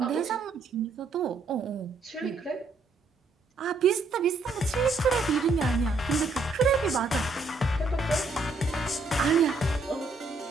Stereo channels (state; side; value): quieter; left; 3.5 dB